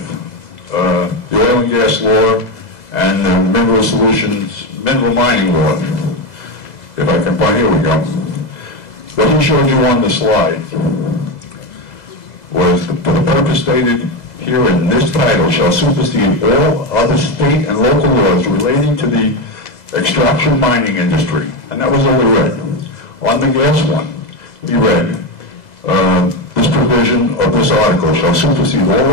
the oil and gas law and the mineral mining law. If I can find, here we go. What he showed you on the slide was for the purpose stated here in this title shall supersede all other state and local laws relating to the extraction mining industry. And that was all he read. On the gas one, he read, this provision of this article shall supersede all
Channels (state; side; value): late; right; 2.0 ms